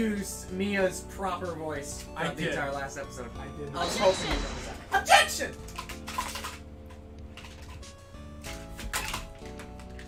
Mia's proper voice I throughout the did. entire last episode. I did. I was hoping you noticed that. Objection!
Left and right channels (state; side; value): identical; both; correlation 1.00